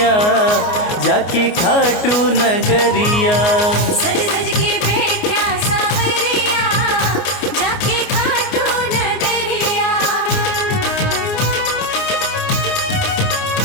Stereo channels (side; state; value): right; late; 29 ms